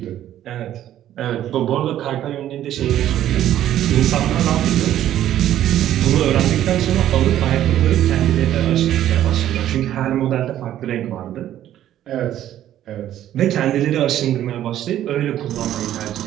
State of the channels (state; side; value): quieter; left; 12.1 dB